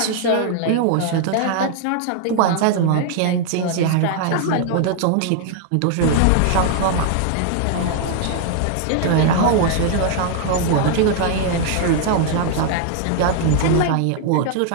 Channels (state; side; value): different; both; correlation 0.00